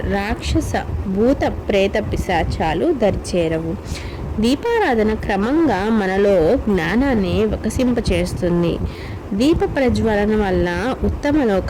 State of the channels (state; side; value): identical; both; correlation 1.00